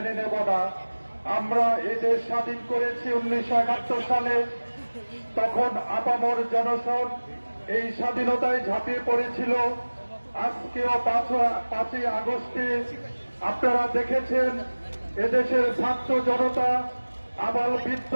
নেব না। আমরা এই দেশ স্বাধীন করেছি 1971 সালে, তখন আপামর জনসন এই স্বাধীনতায় ঝাঁপিয়ে পড়েছিল। আজকেও 5ই আগস্টে আপনারা দেখেছেন এদেশের ছাত্র জনতা, আবাল বৃদ্ধ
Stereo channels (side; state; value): both; inverted; correlation -1.00